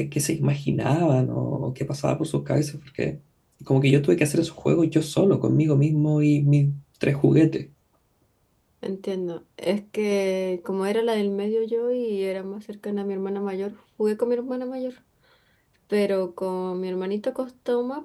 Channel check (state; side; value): identical; both; correlation 1.00